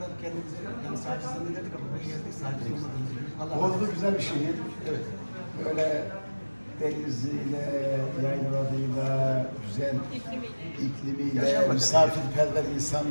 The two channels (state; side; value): inverted; both; correlation -1.00